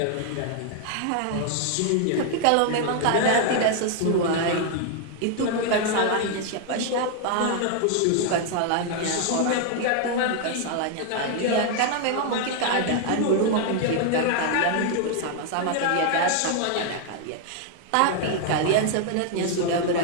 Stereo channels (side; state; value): both; different; correlation 0.00